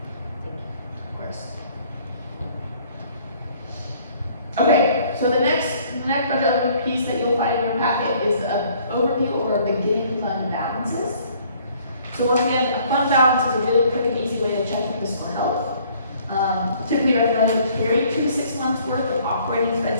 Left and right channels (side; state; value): both; inverted; correlation -0.59